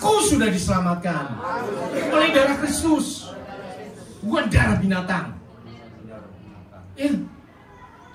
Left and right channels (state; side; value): identical; both; correlation 1.00